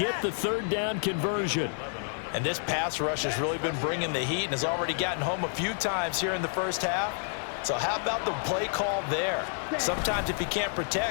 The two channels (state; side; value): silent; right; 58 dB below the other